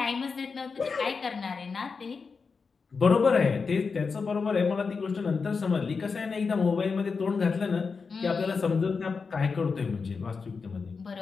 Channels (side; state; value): right; quieter; 5.0 dB